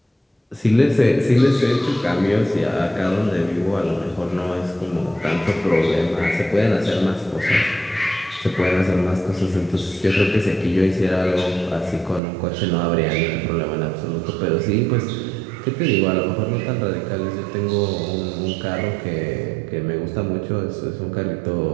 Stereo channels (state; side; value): drops out; left; at 12.2 s